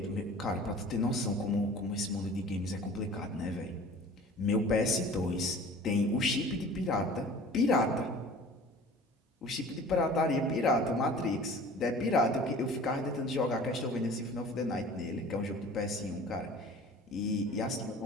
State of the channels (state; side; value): normal; both; correlation 0.44